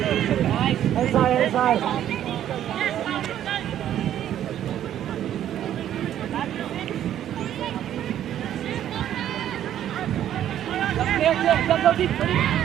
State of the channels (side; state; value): left; quieter; 11.1 dB